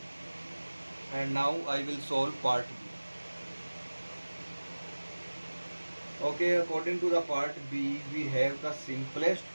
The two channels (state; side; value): inverted; both; correlation -1.00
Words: and now I will solve part B. Okay, according to the part B, we have the simplest